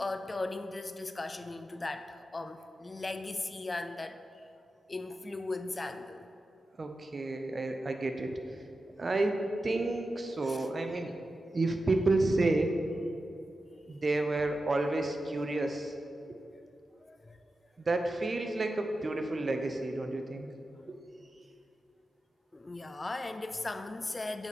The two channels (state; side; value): normal; both; correlation 0.91